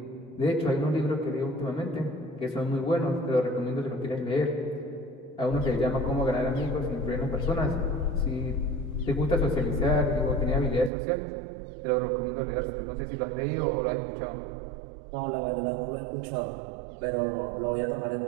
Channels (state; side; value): drops out; left; at 10.9 s